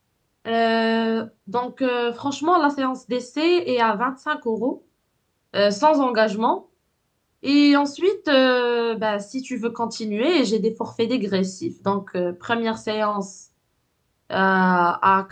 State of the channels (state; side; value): identical; both; correlation 1.00